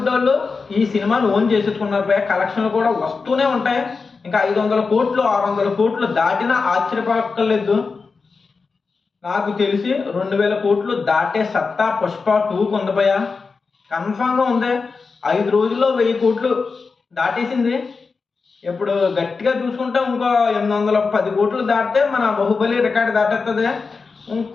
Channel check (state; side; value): quieter; right; 4.6 dB